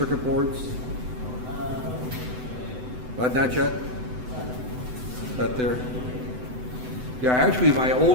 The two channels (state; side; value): late; left; 8.0 ms